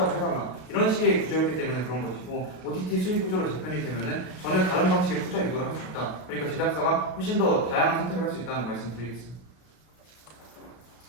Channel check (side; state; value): right; late; 32 ms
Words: 해달라. 이런 식의 구조였기 때문에 그런 것이고 OTT 수익 구조로 재편이 되면은 전혀 다른 방식의 투자 유도를 할 수 있다. 그러니까 제작사가 훨씬 더 다양한 선택을 할 수 있다는 말씀드리겠습니다.